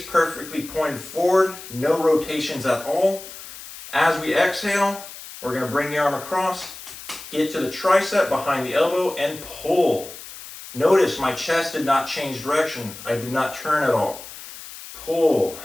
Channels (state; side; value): noise; left; hiss, 14 dB below the sound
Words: perfectly pointed forward, no rotations at all. As we exhale, we're going to bring the arm across, get to the tricep behind the elbow, and pull. Notice my chest did not change direction. I did not turn at all. Pull